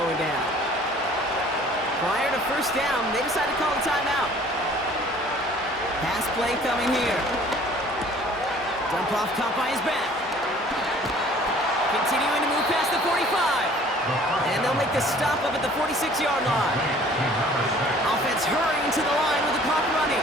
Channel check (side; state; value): both; normal; correlation 0.52